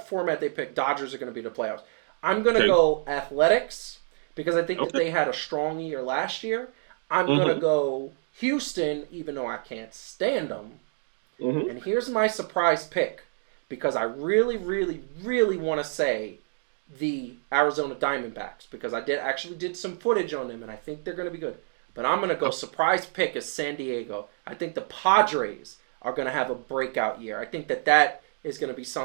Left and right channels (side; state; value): left; silent; 60 dB below the other